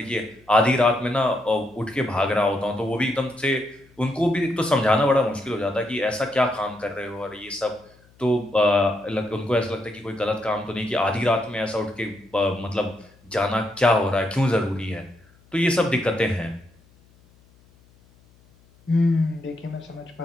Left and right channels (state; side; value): noise; left; hum, 30 dB below the sound